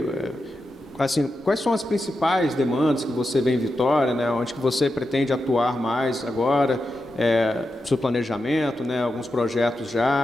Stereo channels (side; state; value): both; normal; correlation 0.89